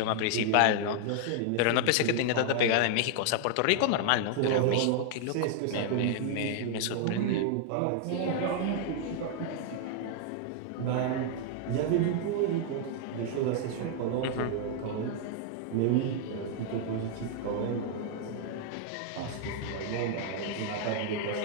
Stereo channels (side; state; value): both; different; correlation 0.00